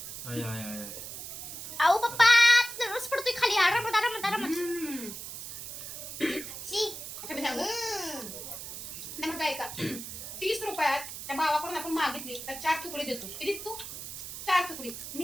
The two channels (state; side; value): noise; right; hiss, 9 dB below the sound